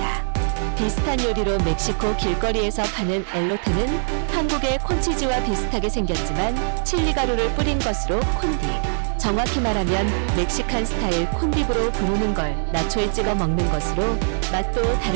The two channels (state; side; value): silent; left; digital silence